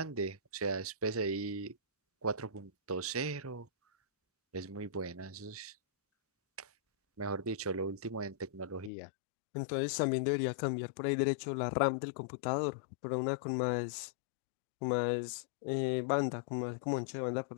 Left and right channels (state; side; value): drops out; right; at 8.9 s